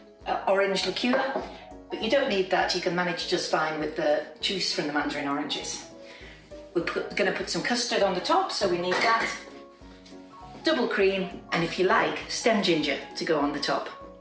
orange liqueur, but you don't need that, you can manage just fine with the juice from the mandarin oranges. We're going to put some custard on the top, so we need that, double cream, and if you like, stem ginger to go on the top.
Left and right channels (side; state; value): both; identical; correlation 1.00